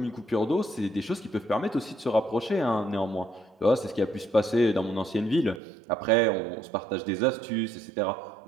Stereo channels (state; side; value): drops out; left; at 5.6 s